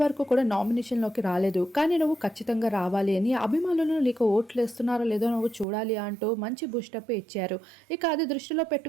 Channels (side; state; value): left; drops out; at 5.7 s